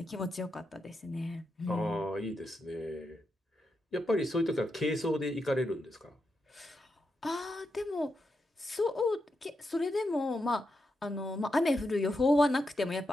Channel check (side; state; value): both; normal; correlation 0.85